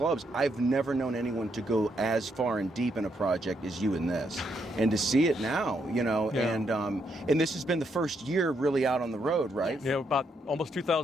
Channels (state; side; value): normal; both; correlation 0.77